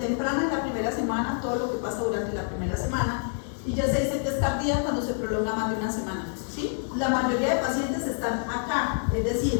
es la primera semana, todo lo que pasa durante la primera semana. Y ya se dice que es tardía cuando se prolonga más de una semana, ¿sí? La mayoría de pacientes están acá, es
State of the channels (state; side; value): silent; right; 60 dB below the other